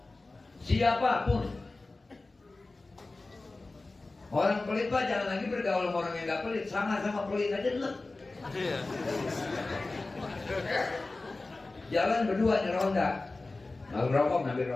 orang pelit Pak, jangan lagi bergaul sama orang yang gak pelit, sama-sama pelit aja dulu. Jalan berdua nyeronda, mau rokok ngambil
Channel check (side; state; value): right; quieter; 3.3 dB